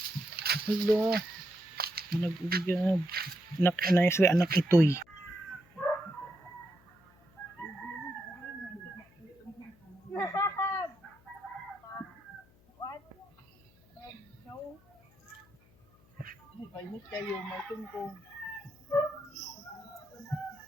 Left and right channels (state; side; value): noise; left; hum, 29 dB below the sound